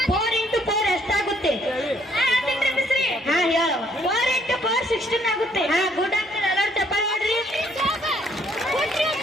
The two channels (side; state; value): both; normal; correlation 0.66